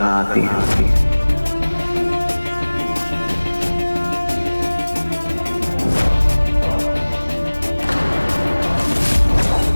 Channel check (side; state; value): both; inverted; correlation -1.00